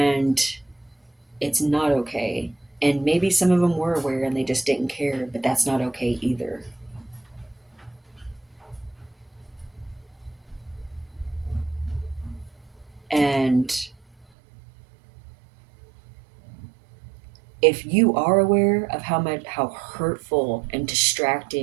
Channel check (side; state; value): left; drops out; at 14.2 s